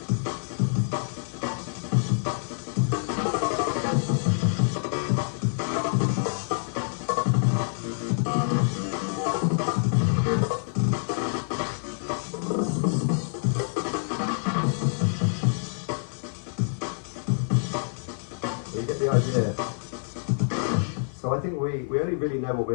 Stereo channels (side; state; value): right; silent; 60 dB below the other